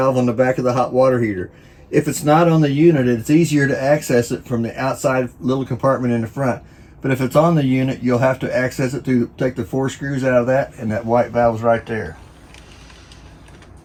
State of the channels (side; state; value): both; identical; correlation 1.00